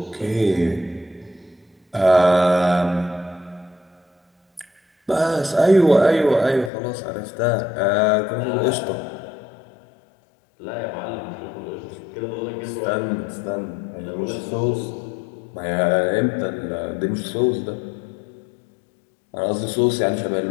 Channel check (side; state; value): right; drops out; at 6.7 s